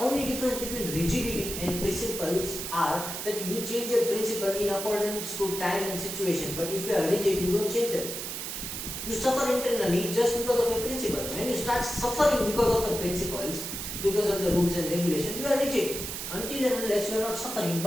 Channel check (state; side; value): noise; right; hiss, 6 dB below the sound